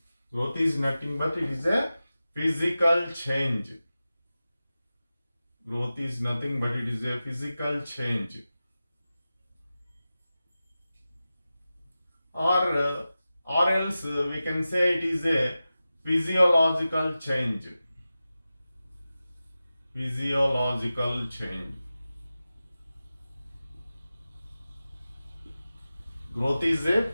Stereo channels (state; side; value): inverted; both; correlation -0.94